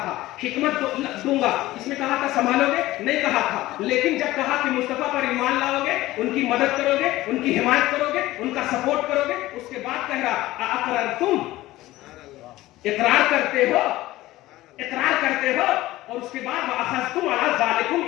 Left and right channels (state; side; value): quieter; right; 16.9 dB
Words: تھا حکمت دوں گا، اس میں کہا تھا سنبھالو گے، نہیں کہا تھا، لیکن جب کہا کہ مصطفیٰ پر ایمان لاؤ گے، ان کی مدد کرو گے، ان کی حمایت کرو گے، ان کا سپورٹ کرو گے، اس کے بعد کہہ رہا اقررتم، اقرار کرتے ہو، اقرار کرتے ہو، اور اس کے بعد واخذتم علی ذالکم